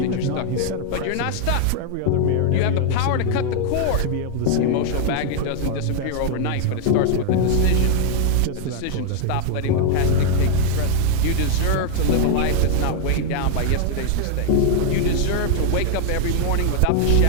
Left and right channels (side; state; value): both; different; correlation 0.00